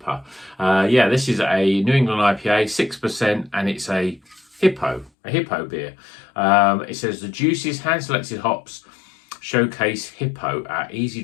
This is a New England IPA, 6%, and it's a Hippo beer. It says the juiciest hand-selected hops showcase Hippo, our easy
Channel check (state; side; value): drops out; right; at 5.1 s